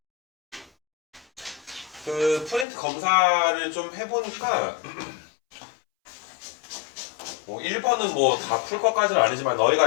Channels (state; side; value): drops out; right; at 2.7 s